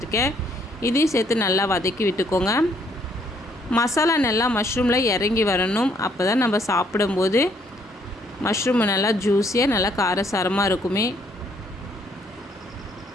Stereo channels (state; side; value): normal; both; correlation 0.67